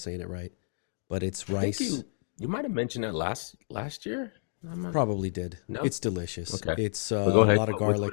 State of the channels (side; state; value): right; silent; digital silence